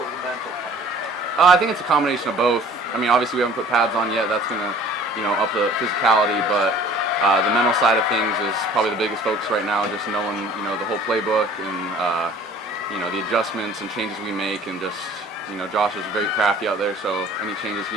the mental part? I think it's a combination of both. I mean, obviously we haven't put pads on yet. That's gonna, up the physicality, but the mental side of things is probably the biggest focus right now. Just knowing, the whole playbook and the adjustments and changes we make, and just, Josh is very crafty out there. So any changes he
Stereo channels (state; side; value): normal; both; correlation 0.50